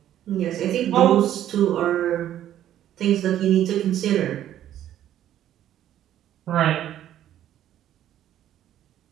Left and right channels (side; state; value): left; quieter; 11.7 dB